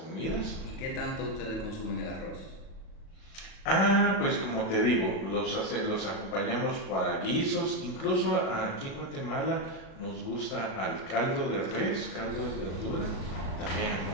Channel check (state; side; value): late; right; 36 ms